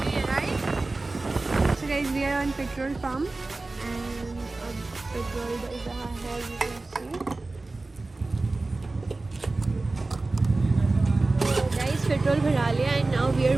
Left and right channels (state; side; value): quieter; left; 3.3 dB